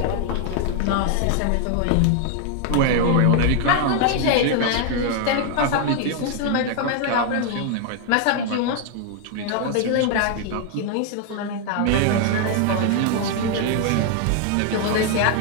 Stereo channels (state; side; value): different; both; correlation 0.00